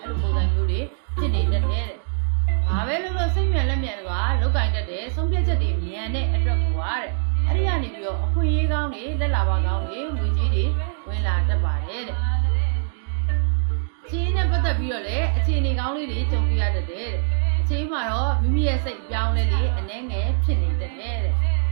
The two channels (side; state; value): left; silent; digital silence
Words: အဲ့လိုပုံစံမျိုးတွေဖြစ်နေတတ်တယ်တဲ့ဘာပဲလို့စိတ်မြန်လက်မြန်တွေကလောက်ကင်တတ်တယ်ဆုံးဖြတ်ချက်တွေမြန်တဲ့အတွက်ကိုပါတဲ့အဲ့ဒီကနေပြီးတော့အခွင့်အရေးကောင်းတွေလက်လာပါကောင်းတွေငွေကြီးတွေဝင်လာတတ်ပါတယ်တဲ့အခြေအနေနဲ့ပတ်သက်ပြီးတော့လည်းအခြေအနေကောင်းလေးတွေကြုံပြရတတ်တယ်တဲ့အချိန်မှာတော့မိမိရဲ့စိတ်ပြောင်းလဲလေးအနှဲငယ်ဖြစ်နေတတ်တယ်တဲ့